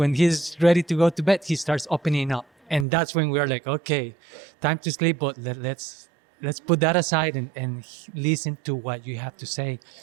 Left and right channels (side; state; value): left; drops out; at 2.9 s